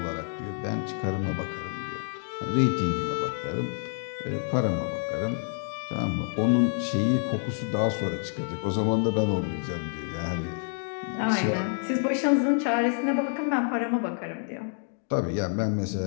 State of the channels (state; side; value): silent; right; 58 dB below the other